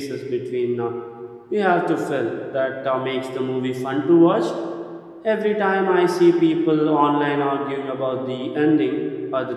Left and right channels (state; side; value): identical; both; correlation 1.00